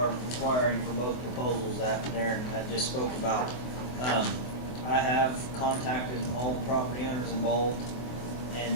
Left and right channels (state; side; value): late; right; 24 ms